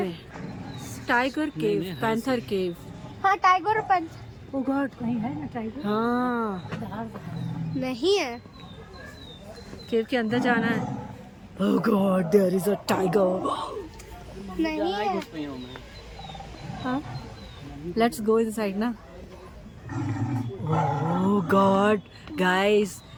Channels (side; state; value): both; identical; correlation 1.00